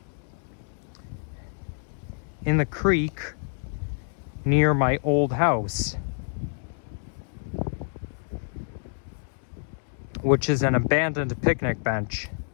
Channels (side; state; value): right; silent; digital silence